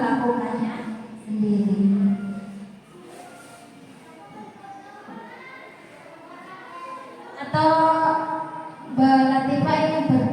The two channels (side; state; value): both; identical; correlation 1.00